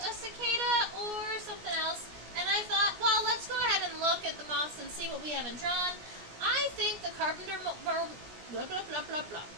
a cicada, or something else, and I thought, well, let's go ahead and look at the moths and see what we haven't drawn. I think the carpenterworm,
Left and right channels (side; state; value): left; late; 17 ms